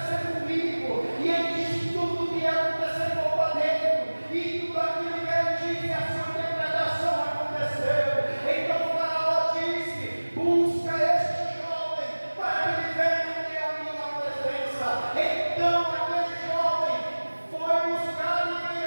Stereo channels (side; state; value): both; inverted; correlation -1.00